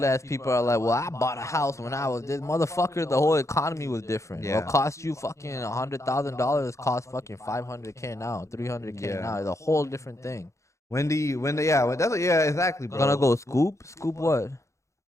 ass people are like, well, I bought a house when I was this motherfucker. The whole economy was different. Yeah. What cost you fucking $100,000 cost fucking $500K now, $300K Yeah. now. It's a whole different thing. yeah, exactly, bro. Gonna go scoop what?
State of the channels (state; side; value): late; right; 0.14 ms